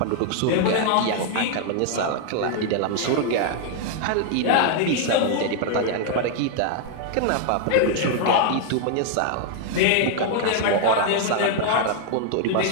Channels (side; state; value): both; different; correlation 0.00